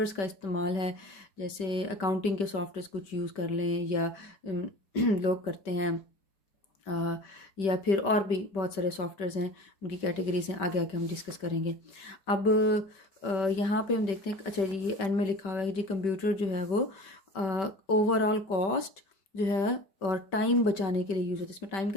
का इस्तेमाल है, जैसे अकाउंटिंग के सॉफ्टवेयर्स कुछ यूज़ कर लें, या लोग करते हैं, या फिर और भी बहुत सारे सॉफ्टवेयर्स हैं, उनकी कैटेगरीज हैं, आगे आगे हम डिस्कस करेंगे। अब यहाँ पे हम देखते हैं, अच्छा ये एंड में लिखा हुआ है जी कंप्यूटर जो है वो ओवरऑल कॉस्ट जो है और टाइम बचाने के लिए यूज़ होता है। इसमें टाइम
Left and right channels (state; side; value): late; right; 5.2 ms